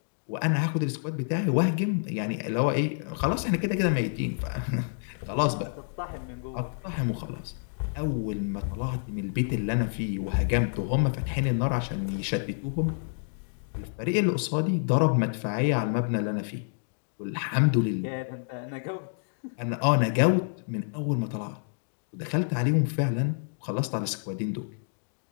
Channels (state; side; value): silent; right; digital silence